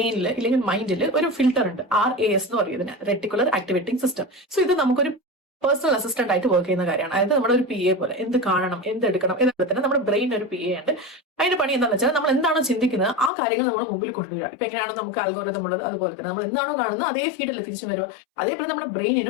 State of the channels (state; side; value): drops out; right; at 13.3 s